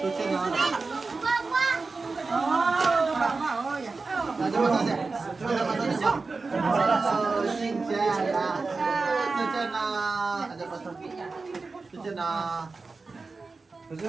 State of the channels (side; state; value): left; quieter; 4.0 dB